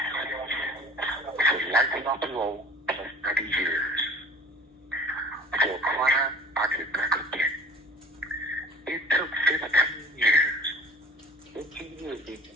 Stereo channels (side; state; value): both; normal; correlation 0.45